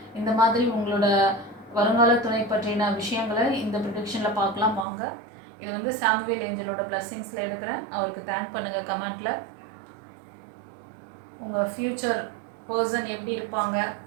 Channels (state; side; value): drops out; left; at 4.9 s